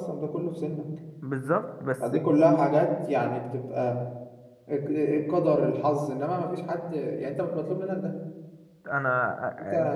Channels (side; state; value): both; identical; correlation 1.00